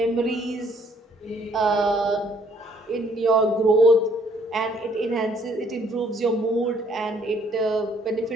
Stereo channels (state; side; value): normal; both; correlation 0.64